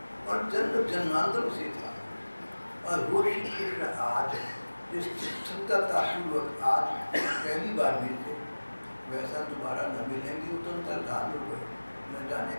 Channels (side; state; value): both; inverted; correlation -1.00